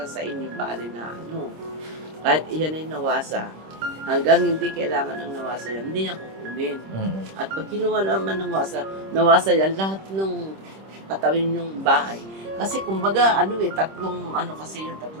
sa inyo bali na Kahit iyan ay nawasa, hanggang hindi kailangan ng nawasa yan, hindi niya kukunin. Mm-mm. At pag kinuha naman ng nawasa yan, lahat ng katawin yung bahay. Kasi kumbaga, tatlong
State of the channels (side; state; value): left; late; 26 ms